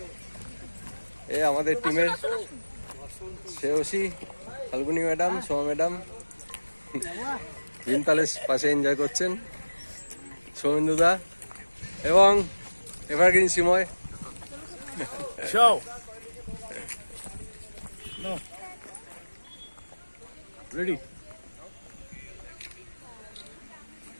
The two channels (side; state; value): both; inverted; correlation -1.00